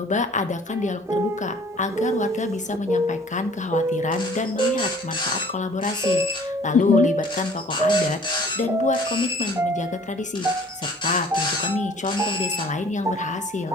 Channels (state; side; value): normal; both; correlation 0.53